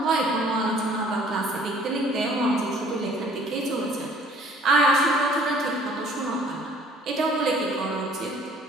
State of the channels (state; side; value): normal; both; correlation 0.55